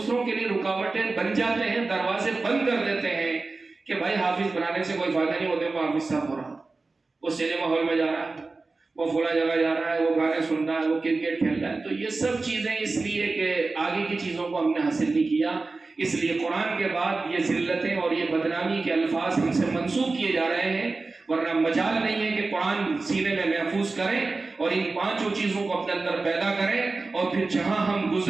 کے لیے رکاوٹیں بن جاتے ہیں، دروازے بند کر دیتے ہیں کہ بھائی حافظ بنانے سے کوئی فائدہ نہیں ہوتا، وہ حافظ صاحب ہو رہا، وہ سینما ہال میں جا رہا ہے، وہ فلاں جگہ جا رہا ہے، وہ گانے سن رہا ہے، وہ کرکٹ کھیل رہا ہے۔ تو یہ سب چیزیں اس لیے کہ آگے کی چیزوں کو ہم نے حاصل نہیں کیا، اس لیے قرآن کے بعد یہ ذلتیں اور یہ بدنامی کے الفاظ ہم سے منسوخ کیے جا رہے ہیں، ورنہ مجال نہیں ہے کہ قرآن سینے میں محفوظ کریں اور ان پانچوں چیزوں کو اپنے اندر پیدا کریں، اور پھر جہاں ہم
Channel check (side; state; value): left; quieter; 3.7 dB